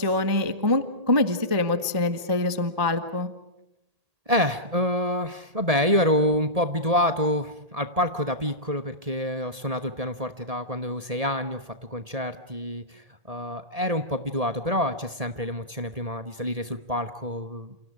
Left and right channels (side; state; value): left; late; 1.7 ms